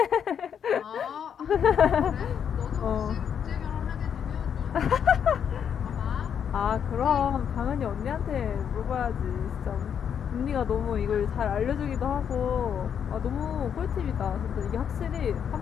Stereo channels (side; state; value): right; quieter; 8.0 dB